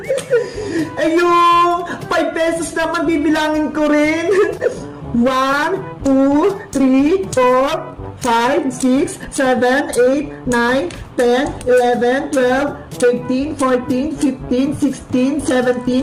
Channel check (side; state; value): both; identical; correlation 1.00